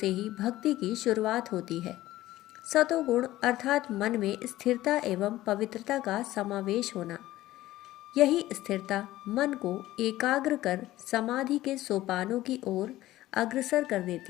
ही भक्ति की शुरुआत होती है। सतोगुण अर्थात मन में स्थिरता एवं पवित्रता का समावेश होना। यही स्थिरता मन को एकाग्र कर समाधि के सोपानों की ओर अग्रसर कर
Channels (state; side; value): quieter; right; 15.7 dB